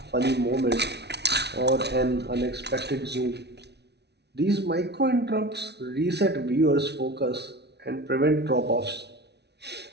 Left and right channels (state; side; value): late; left; 0.49 ms